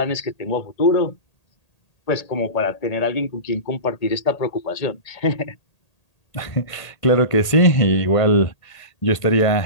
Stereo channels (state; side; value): late; right; 1.8 ms